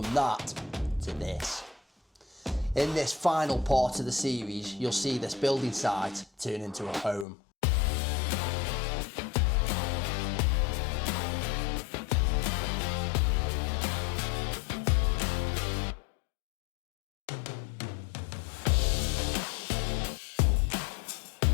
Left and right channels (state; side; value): drops out; right; at 7.2 s